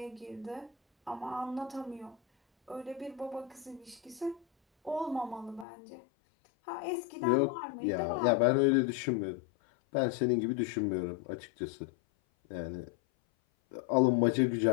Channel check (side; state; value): right; drops out; at 5.7 s